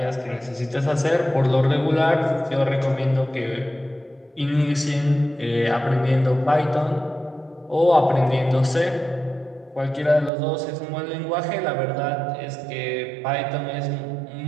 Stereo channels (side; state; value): left; drops out; at 10.3 s